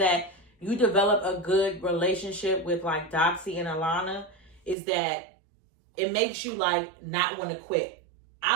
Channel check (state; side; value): drops out; left; at 4.8 s